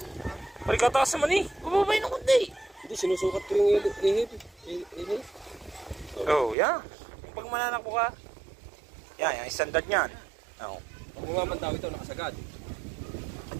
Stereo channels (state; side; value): drops out; left; at 6.6 s